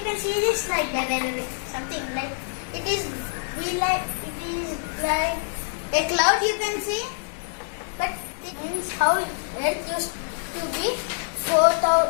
can see this like something like it is like a cloud. You can see, but it means how Earth used to be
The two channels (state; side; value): silent; right; digital silence